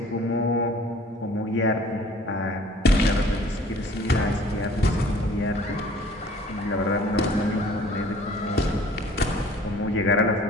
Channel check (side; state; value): both; normal; correlation 0.52